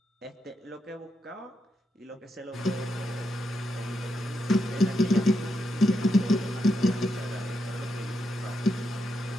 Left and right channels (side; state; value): both; normal; correlation 0.84